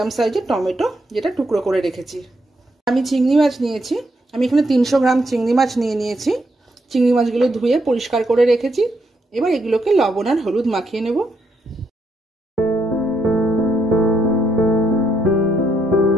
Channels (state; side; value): normal; both; correlation 0.76